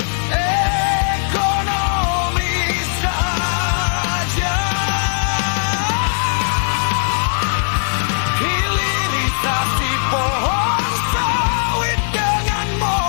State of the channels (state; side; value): silent; right; digital silence